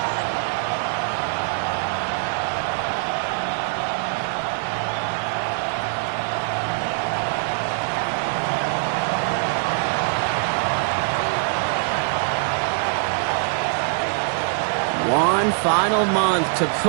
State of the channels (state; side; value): silent; left; 57 dB below the other